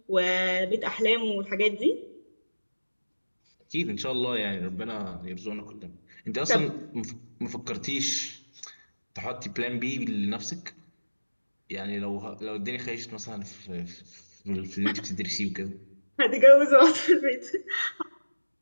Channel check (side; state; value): both; inverted; correlation -1.00